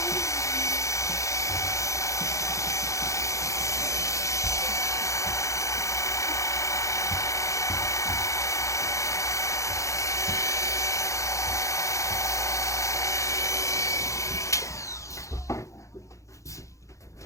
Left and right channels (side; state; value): right; late; 0.15 ms